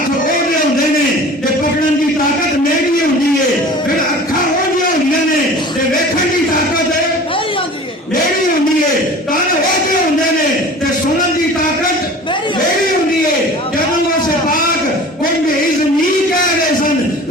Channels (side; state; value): both; normal; correlation 0.41